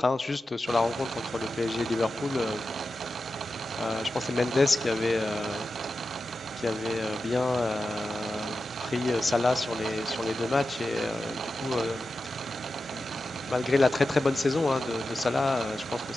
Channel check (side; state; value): both; normal; correlation 0.92